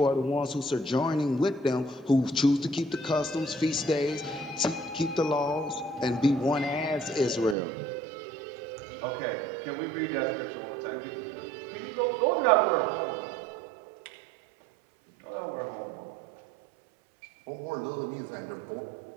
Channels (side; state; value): left; drops out; at 7.6 s